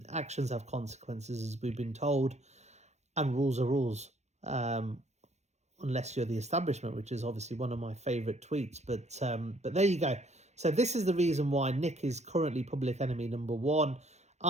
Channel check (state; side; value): late; left; 0.33 ms